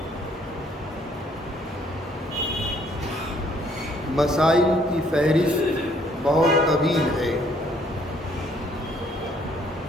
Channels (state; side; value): normal; both; correlation 0.64